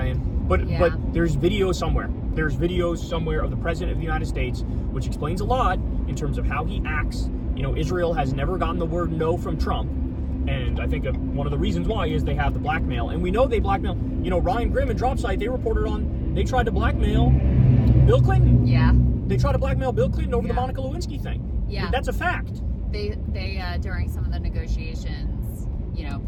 But there's video somewhere. There's videos somewhere of the President of the United States, which explains a lot in terms of how he acts. Israel has never gotten the word no from Trump. And I think one of the reasons why is they have the blackmail. And we know they blackmail. Ryan Grimm and Dropsite, they tried to blackmail Bill Clinton. Yeah. They tried to blackmail Bill Clinton over the Monica Lewinsky thing. Yeah. That's a fact. They during some of the negotiations,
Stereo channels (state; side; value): identical; both; correlation 1.00